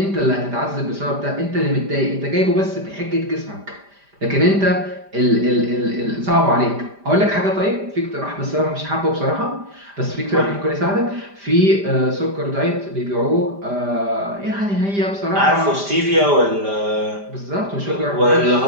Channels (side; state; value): left; late; 5.0 ms